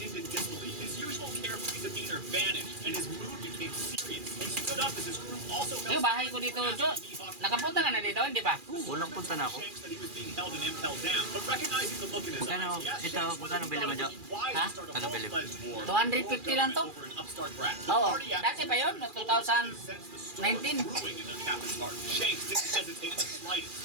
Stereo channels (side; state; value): left; late; 2.4 ms